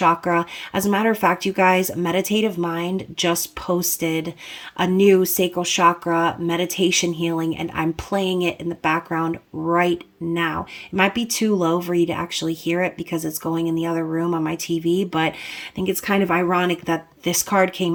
As a matter of fact, you guys, Meditative Mind just posted a new sacral chakra meditation healing, and I'm playing it in the background right now. It might be too low for you to actually hear it because it's going in the other room on my TV, but I think it's kind of ironic that this card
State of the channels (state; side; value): identical; both; correlation 1.00